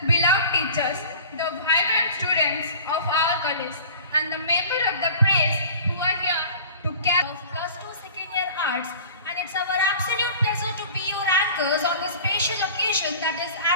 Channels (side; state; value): both; inverted; correlation -0.42